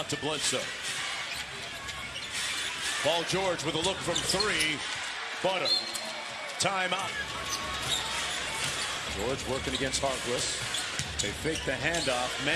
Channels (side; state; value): both; identical; correlation 1.00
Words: to Bledsoe. Paul George with a look from 3. Butter. Timeout. George working against Harkless. They fake the handoff.